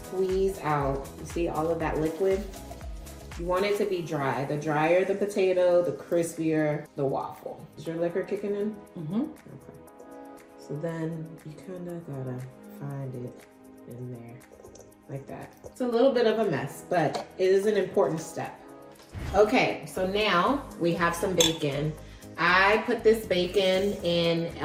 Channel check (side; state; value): both; identical; correlation 1.00